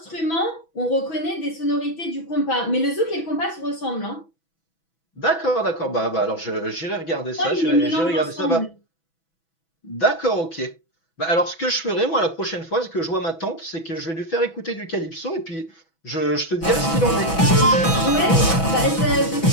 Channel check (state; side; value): late; right; 6.1 ms